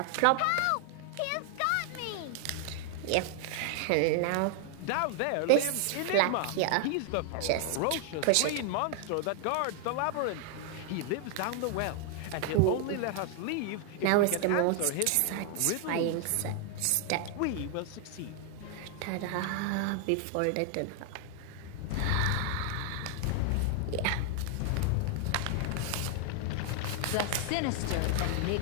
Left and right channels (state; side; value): different; both; correlation 0.00